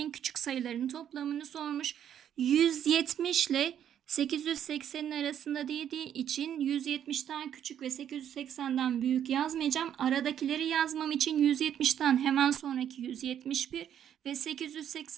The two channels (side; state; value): left; quieter; 9.7 dB